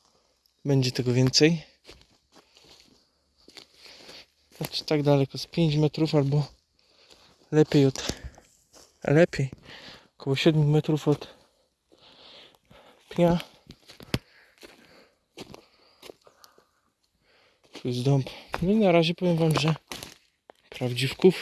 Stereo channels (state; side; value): identical; both; correlation 1.00